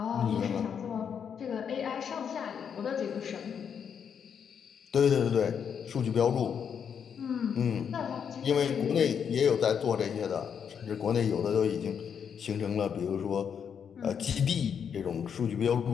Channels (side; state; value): right; quieter; 7.4 dB